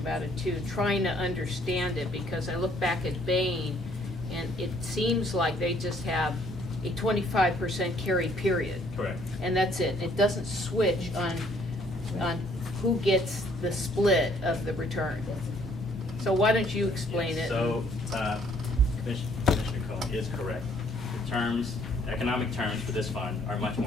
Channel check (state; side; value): normal; both; correlation 0.63